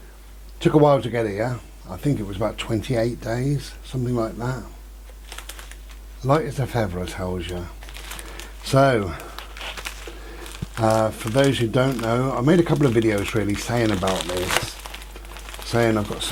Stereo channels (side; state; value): both; identical; correlation 1.00